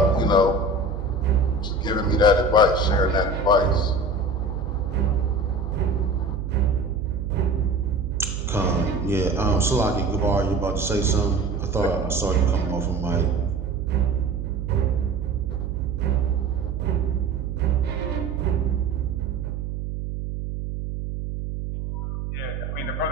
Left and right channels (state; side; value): noise; right; hum, 5 dB below the sound